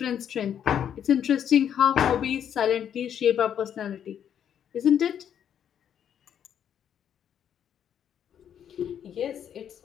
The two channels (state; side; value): quieter; right; 9.1 dB